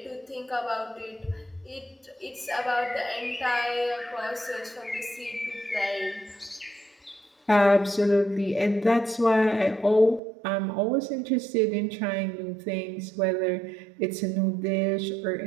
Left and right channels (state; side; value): drops out; left; at 10.2 s